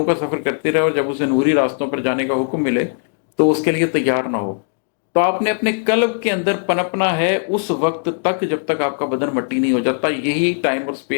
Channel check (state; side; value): silent; right; 67 dB below the other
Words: का सफर करती रहे और जब उसे नूरी रास्तों पर जाने का हुक्म मिले तो उसके लिए तैयार ना हो। तो आपने अपने कल्ब के अंदर पनपना है उस वक्त तक जब तक आपका बदन मट्टी नहीं हो जाता। यही टाइम और